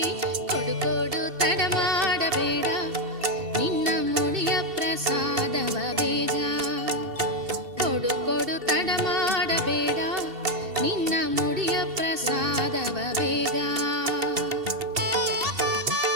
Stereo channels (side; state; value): left; late; 2.7 ms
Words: ಕೊಡು ಕೊಡು ತಡ ಮಾಡಬೇಡ ನಿನ್ನ ಮುಡಿಯ ಪ್ರಸಾದವ ಬೇಗ. ಕೊಡು ಕೊಡು ತಡ ಮಾಡಬೇಡ ನಿನ್ನ ಮುಡಿಯ ಪ್ರಸಾದವ ಬೇಗ.